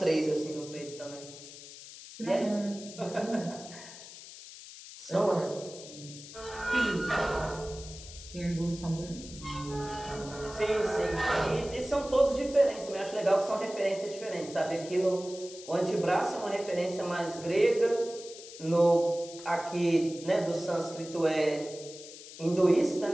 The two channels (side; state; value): left; noise; hiss, 15 dB below the sound